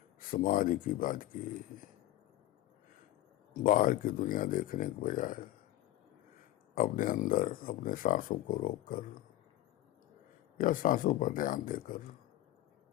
समाधि की बात की। बाहर की दुनिया देखने के बजाय अपने अंदर अपने सांसों को रोककर या सांसों पर ध्यान देकर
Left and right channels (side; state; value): right; quieter; 14.6 dB